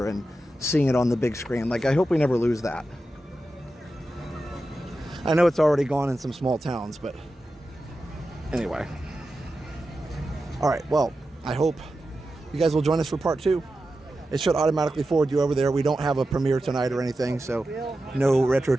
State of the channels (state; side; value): normal; both; correlation 0.91